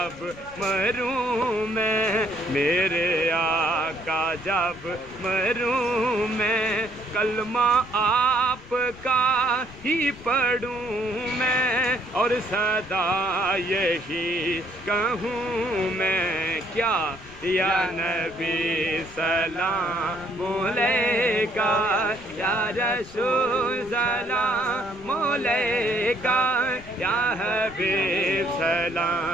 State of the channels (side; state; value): left; noise; rumble, 20 dB below the sound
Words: مروں میں، میرے آقا جب مروں میں، کلمہ آپ کا ہی پڑھوں میں، اور صدا یہی کہوں میں کیا، یا نبی سلام علیکہ، یا رسول سلام علیکہ، یا حبیب